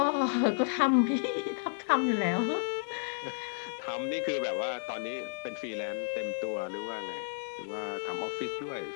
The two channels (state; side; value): silent; right; digital silence